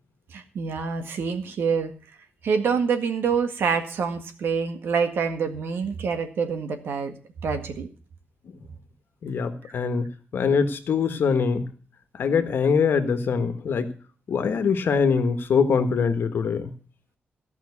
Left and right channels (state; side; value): normal; both; correlation 0.69